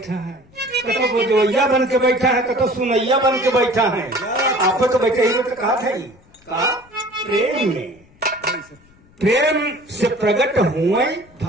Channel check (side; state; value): left; noise; rumble, 28 dB below the sound